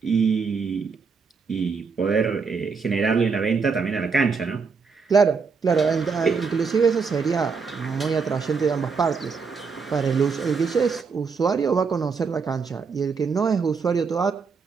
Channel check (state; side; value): quieter; left; 5.2 dB